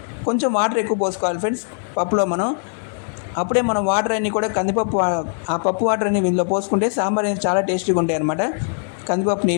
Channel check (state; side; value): silent; right; digital silence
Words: కొంచెం వాటర్ ఎక్కువ పోసుకోవాలి ఫ్రెండ్స్ పప్పులో మనం. అప్పుడే మనం వాటర్ అన్నీ కూడా కందిపప్పు, ఆ పప్పు వాటర్ అన్ని ఇందులో పోసుకుంటే సాంబార్ అనేది చాలా టేస్టీగా ఉంటాయి అన్నమాట. కందిపప్పు